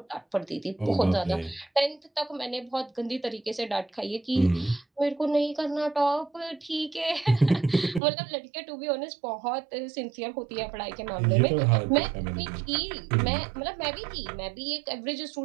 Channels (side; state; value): left; drops out; at 8.0 s